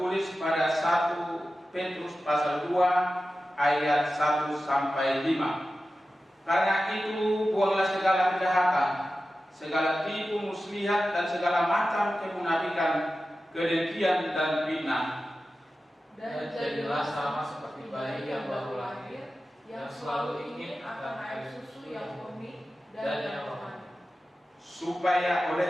pada 1 Petrus pasal 2 ayat 1 sampai 5. Karena itu buanglah segala kejahatan, segala tipu muslihat dan segala macam kemunafikan, kedengkian dan fitnah. Dan jadilah sama seperti bayi yang baru lahir, yang selalu ingin akan air susu yang murni dan yang rohani, Supaya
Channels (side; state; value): both; normal; correlation 0.94